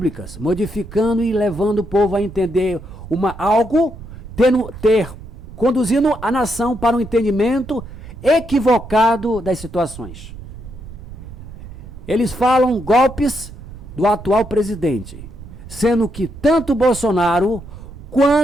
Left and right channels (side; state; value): right; noise; rumble, 14 dB below the sound